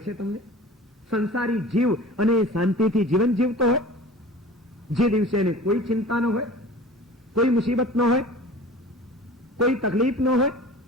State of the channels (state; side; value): normal; both; correlation 0.40